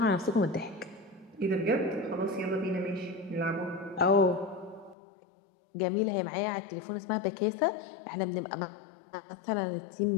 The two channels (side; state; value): right; drops out; at 5.0 s